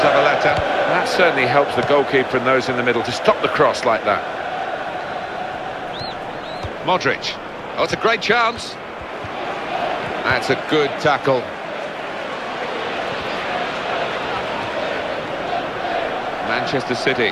That certainly helps the goalkeeper and those in the middle to stop the cross like that. Modric. Oh, it's a great chance. That's a good tackle. Manchester City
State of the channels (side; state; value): both; identical; correlation 1.00